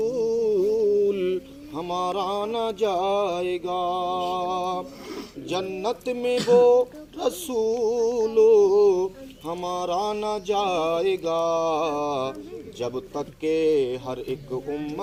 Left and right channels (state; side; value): identical; both; correlation 1.00